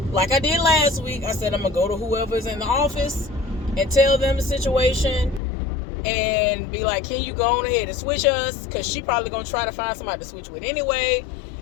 like I did last week, I said I'm going to go to whoever's in the office and tell them the situation and be like, can you go on ahead and switch us? Because she probably going to try to find somebody to switch with anyway.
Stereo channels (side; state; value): right; drops out; at 5.4 s